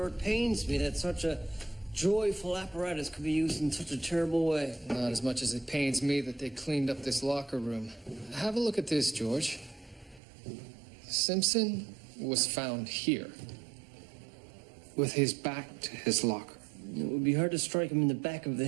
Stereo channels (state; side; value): drops out; left; at 10.2 s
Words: it pains me that such a joyful apparatus could be used in such a terrible way. Not as much as it pains me that they cleaned up this locker room. Have a look at this, George. Simpson was found here, with his back to his locker. It would be hard to strike him in the back of the